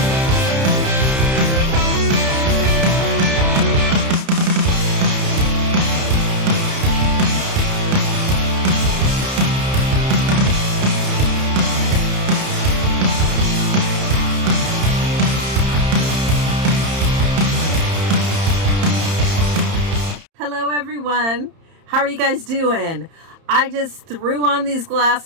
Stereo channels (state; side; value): late; left; 31 ms